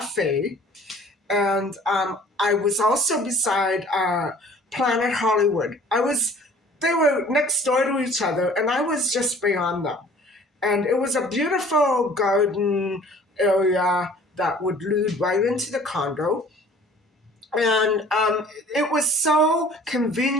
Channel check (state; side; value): normal; both; correlation 0.51